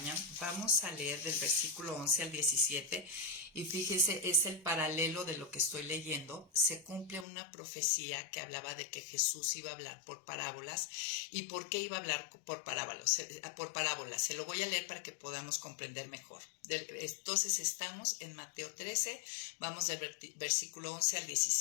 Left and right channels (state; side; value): drops out; right; at 7.2 s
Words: vamos a leer del versículo 11 al 17, y fíjese, es el paralelo de lo que estoy leyendo. Se cumple una profecía que hablaba de que Jesús iba a hablar por parábolas. ¿Y por qué iba a hablar por parábolas? Se lo voy a leer para que podamos comprender mejor. Entonces estamos en Mateo 13, vamos del versículo 11 al